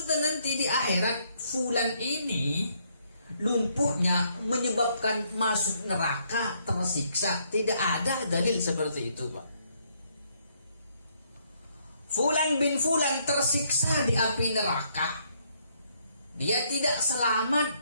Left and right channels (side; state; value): both; inverted; correlation -0.71